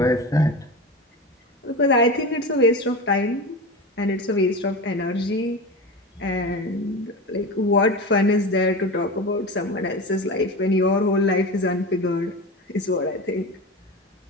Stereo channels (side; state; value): both; normal; correlation 0.27